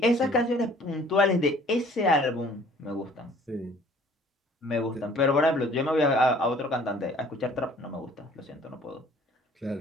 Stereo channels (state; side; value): normal; both; correlation 0.54